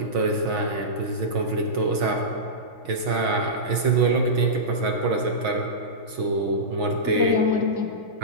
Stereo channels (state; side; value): late; left; 6.3 ms